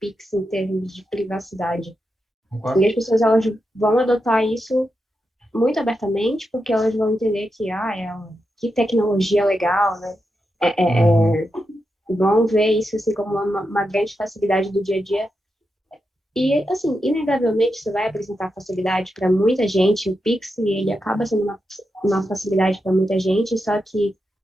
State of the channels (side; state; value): both; normal; correlation 0.87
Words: em termos de privacidade. E Concordo? as pessoas elas vão adotar isso muito abertamente, porque elas vão entender que tecnologia legal, né? Uhum. Vão ver isso assim como uma grande facilidade do dia a dia. E, assim, inegavelmente, isso vai apresentar facilidade para muita gente. O Pix, ele acaba sendo uma facilidade para muita gente, só que